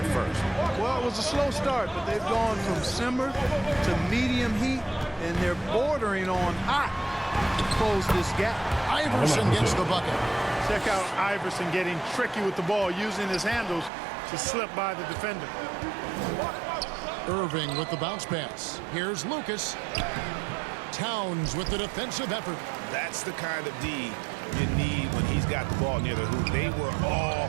first. Well, it was a slow start, but they've gone from simmer to medium heat, and they're bordering on hot to close this gap. Iverson gets the bucket. Check out Iverson getting tricky with the ball, using his handles to slip by the defender. Irving with the bounce pass. Here's Lucas. Towns with the defensive effort. That's the kind of D you need when he's got the ball near the hoop. They were all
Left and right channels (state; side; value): drops out; left; at 13.9 s